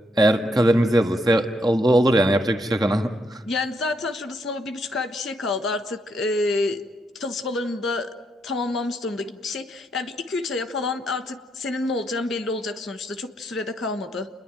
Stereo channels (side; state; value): both; normal; correlation 0.76